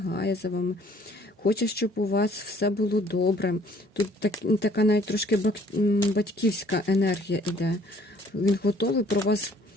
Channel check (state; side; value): normal; both; correlation 0.59